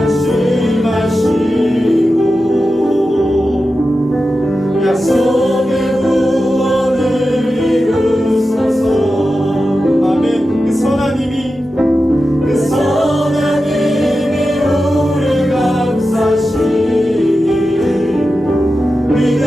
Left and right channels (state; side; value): normal; both; correlation 0.92